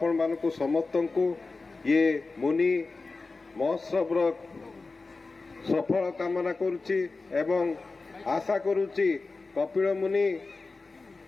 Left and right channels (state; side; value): quieter; right; 3.8 dB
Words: मानकु समस्त को ये मुनि महोत्सव सफल कामना करुच्ची एवं आशा करुच्ची कपिल मुनि